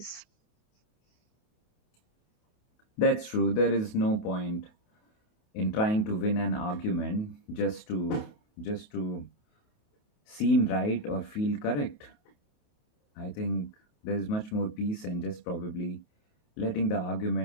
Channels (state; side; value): late; right; 28 ms